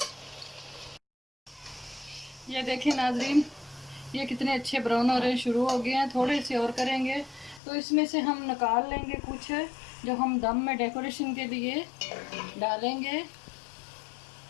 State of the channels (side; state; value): right; drops out; at 7.6 s